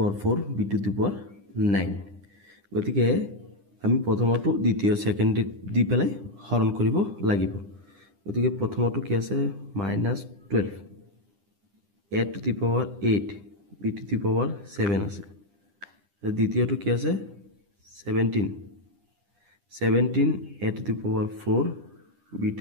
4 b to the power 9 গতিকে আমি প্ৰথমটো দ্বিতীয় সেকেন্ড দি পেলাই হৰণ কৰিব লাগিব গতিকে প্ৰথমটো কি আছে -12 a to the power 8 b to the power 7 আছে দ্বিতীয়টো কি আছে 17 a to the power 4 b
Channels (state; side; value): late; left; 10 ms